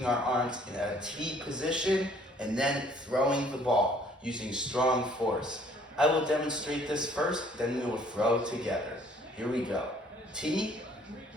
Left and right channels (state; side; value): normal; both; correlation 0.59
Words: our arms in a T position, and then throwing the ball using strong force. I will demonstrate this first, then we will throw together. Here we go. T